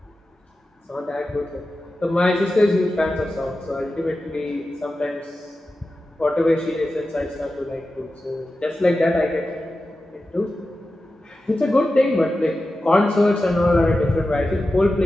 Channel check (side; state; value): both; normal; correlation 0.93